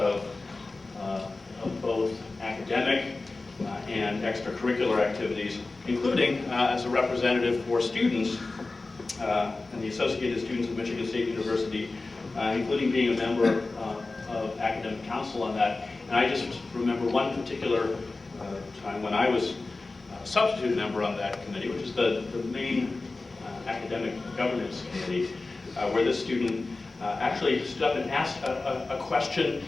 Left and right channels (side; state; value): right; quieter; 3.4 dB